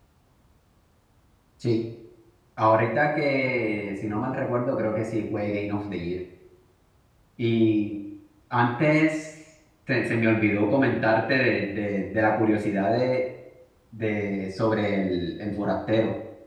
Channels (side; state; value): both; identical; correlation 1.00